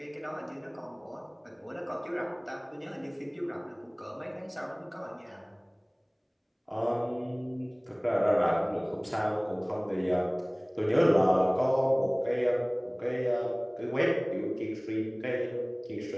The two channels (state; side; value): identical; both; correlation 1.00